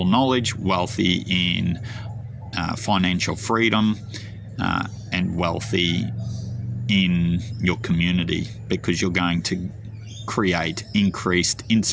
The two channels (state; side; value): identical; both; correlation 1.00